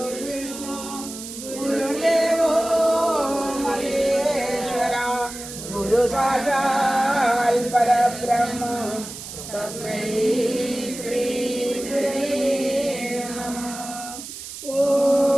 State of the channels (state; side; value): noise; right; hiss, 11 dB below the sound